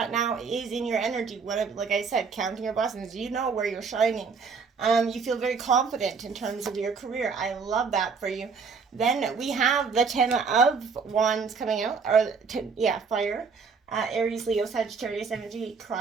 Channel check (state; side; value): quieter; left; 5.3 dB